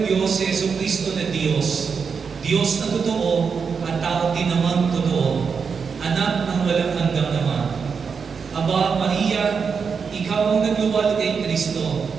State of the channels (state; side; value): quieter; left; 5.8 dB